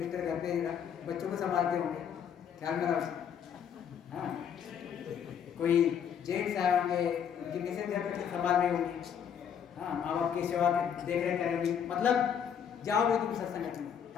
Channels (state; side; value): quieter; right; 8.2 dB